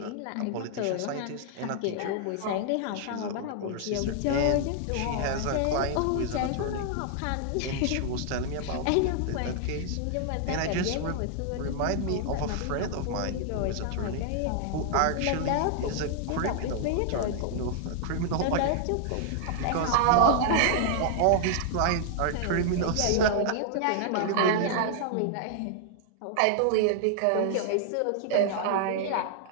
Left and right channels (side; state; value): both; different; correlation 0.00